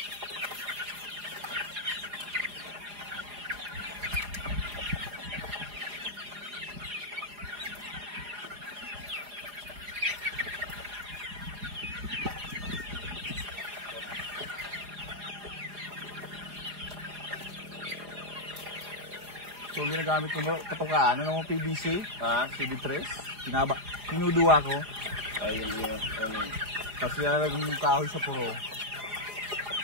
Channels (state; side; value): late; left; 4.9 ms